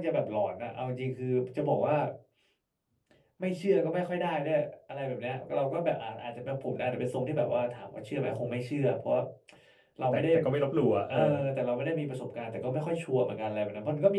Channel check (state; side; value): identical; both; correlation 1.00